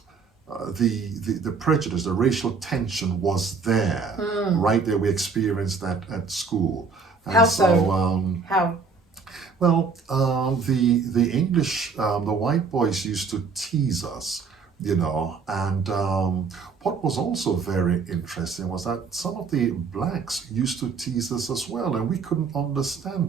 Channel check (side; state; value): left; quieter; 4.9 dB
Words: the prejudice, the racial tension was there, right there. We experienced that at school. And How so? How? Well, the English, the white boys used to tease us, and what was also very interesting was that some of the blacks used to tease us as well, and we couldn't